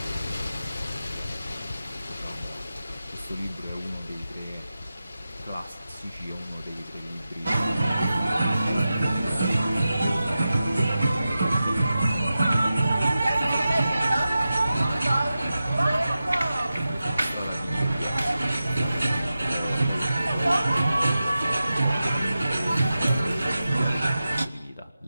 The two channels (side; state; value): both; inverted; correlation -0.93